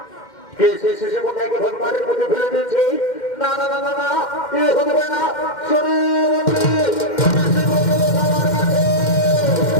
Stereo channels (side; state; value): right; late; 2.1 ms